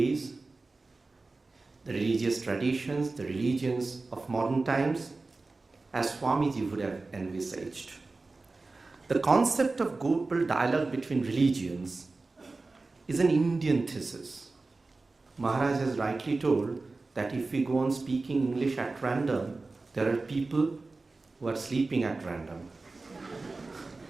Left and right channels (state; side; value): quieter; left; 3.6 dB